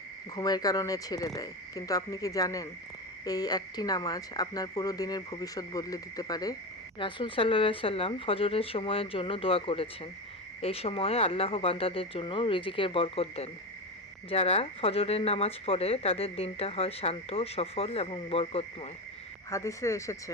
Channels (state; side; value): normal; both; correlation 0.19